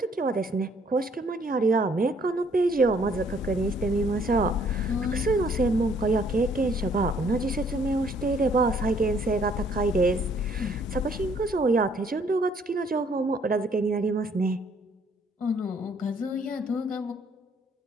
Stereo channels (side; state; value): both; normal; correlation 0.63